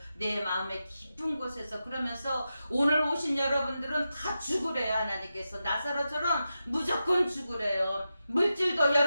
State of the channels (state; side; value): inverted; both; correlation -0.90